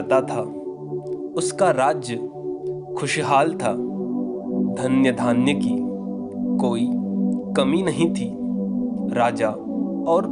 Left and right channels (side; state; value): both; identical; correlation 1.00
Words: था। उसका राज्य खुशहाल था, धन्य धान्य की कोई कमी नहीं थी। राजा और